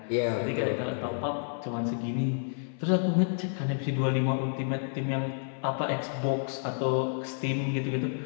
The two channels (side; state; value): right; silent; 58 dB below the other